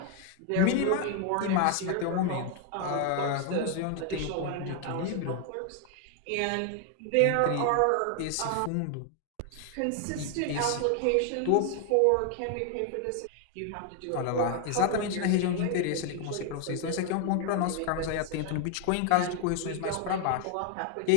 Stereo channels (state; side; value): different; both; correlation 0.01